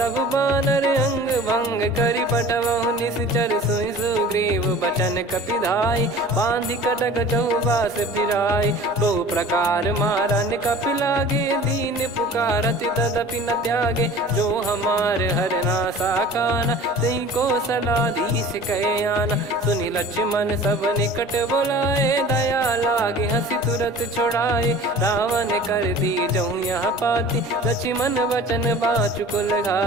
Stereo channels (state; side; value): normal; both; correlation 0.43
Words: बानर, अंग भंग करि पटवहु निश्चर, सुनि सुग्रीव बचन कपिधाई, बांधि कटक चौबास फिराई, बहु प्रकार मारन कपि लागे, दीन पुकारत तदपि न त्यागे, जो हमार हरना साकाना, तई को सलाधीश कहे आना, सुनि लक्ष्मण सब निकट बुलाए, दया लागे हंसी तुरत छोड़ाए, रावण कर दी जहूँ यहाँ पाती, लक्ष्मण वचन बाचु कुल